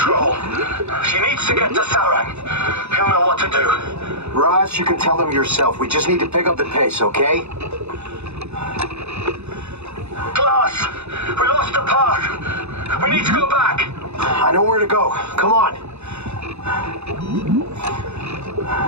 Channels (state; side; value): late; left; 0.81 ms